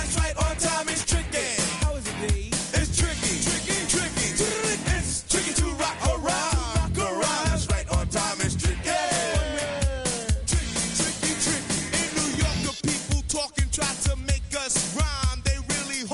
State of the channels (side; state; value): both; identical; correlation 1.00